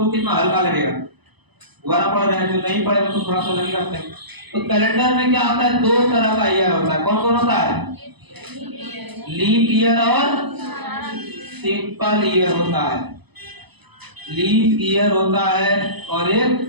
कितना हल्का लगेगा, दोबारा पढ़ रहे हैं, जो नहीं पढ़े तो थोड़ा सा लगेगा। तो कैलेंडर में क्या होता है, दो तरह का ईयर होता है। कौन कौन होता है? लीप ईयर और सिंपल ईयर होता है। लीप ईयर होता है और एक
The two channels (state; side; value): late; left; 0.99 ms